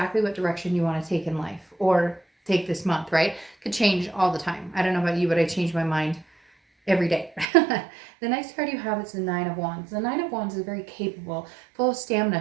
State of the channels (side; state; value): left; drops out; at 7.5 s